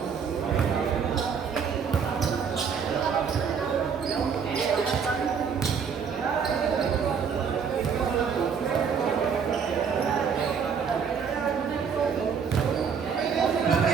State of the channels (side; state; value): left; quieter; 6.6 dB